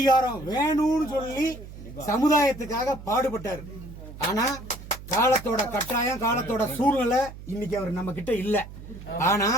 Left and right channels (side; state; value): right; noise; hum, 14 dB below the sound